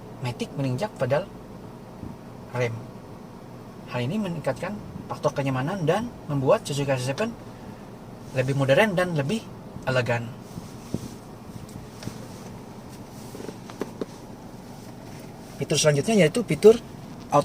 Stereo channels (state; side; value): identical; both; correlation 1.00